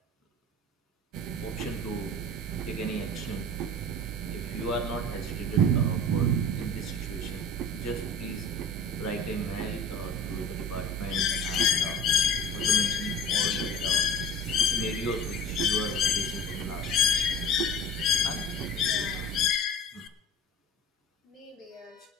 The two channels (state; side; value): normal; both; correlation 0.38